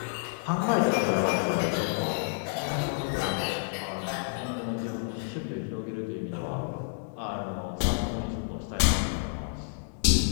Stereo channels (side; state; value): right; silent; digital silence